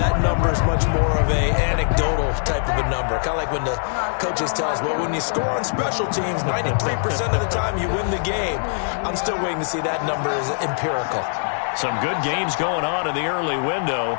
number is much more of a anecdotal type of a number. Kind of like when the coaches tell us, well, when you score on special teams, 93% of the time you win the game. I'm still waiting to see that number is empirical. Some good games going on in the early window.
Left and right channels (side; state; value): right; silent; digital silence